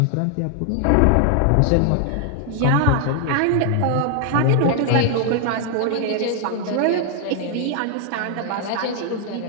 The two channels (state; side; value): different; both; correlation 0.00